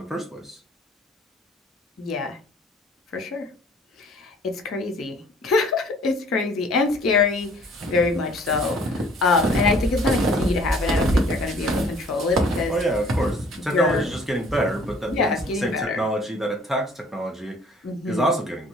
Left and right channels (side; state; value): both; normal; correlation 0.55